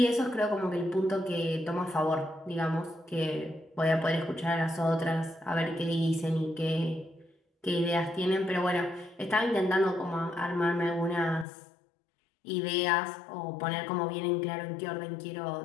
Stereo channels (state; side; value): drops out; right; at 11.5 s